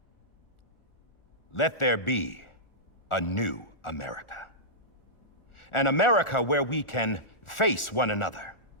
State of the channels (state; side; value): late; right; 1.4 ms